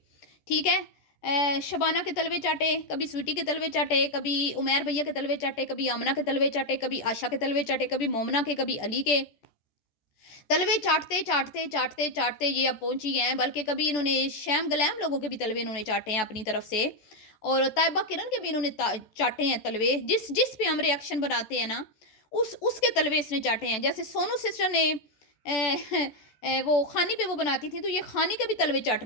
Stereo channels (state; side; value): late; right; 14 ms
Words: ठीक है। शबाना के तलवे चाटे, कभी स्वीटी के तलवे चाटे, कभी उमैर भैया के तलवे चाटे, कभी आमना के तलवे चाटे, कभी आशा के तलवे चाटे, कभी मोमना के, कभी अली के तलवे चाटते चाटते चाटते चाटते ये अब पहुंची हैं। बल्कि कभी इन्होंने शैम गलैम लोगों के भी तलवे इन्होंने चाटे हैं अपनी तरफ से, और ताइबा किरण के भी इन्होंने चाटे हैं तलवे। जिस जिस पे हम रिएक्शन बनाते हैं ना, उसके तलवे इसने चाटे हैं। जैसे सोनू सिस्टर ने वो खानी पे वो बनाती थी, तो ये खानी के भी तलवे